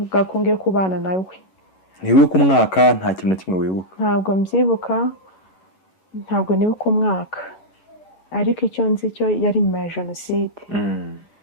ko ngiye kubana nawe. Ntiwibuka umwaka, nta kintu na kimwe wibuka? Ntabwo mbyibuka, ntabwo nibuka umwaka, ariko icyo nzi cyo yari nyuma ya Jenoside.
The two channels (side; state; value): right; late; 11 ms